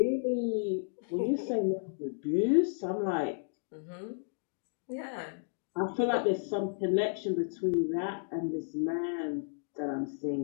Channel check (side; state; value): right; silent; digital silence